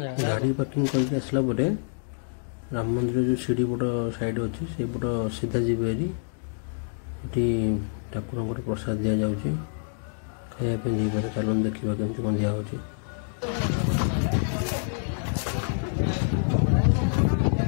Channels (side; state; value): right; silent; digital silence